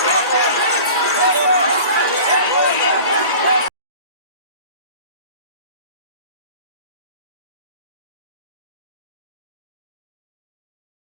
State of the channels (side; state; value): both; inverted; correlation -0.41